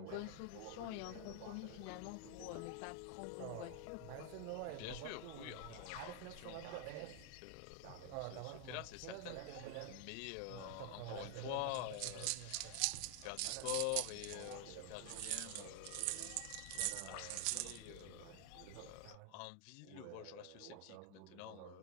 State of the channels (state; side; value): different; both; correlation 0.00